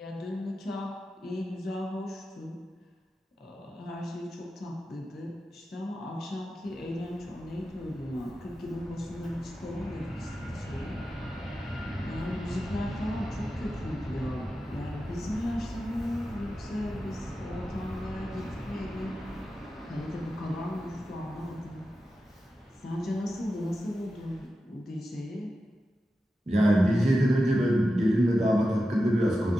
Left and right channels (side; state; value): both; normal; correlation 0.91